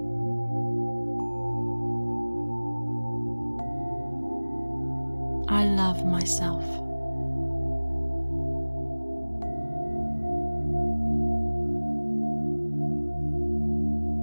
I love myself.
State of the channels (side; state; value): both; inverted; correlation -1.00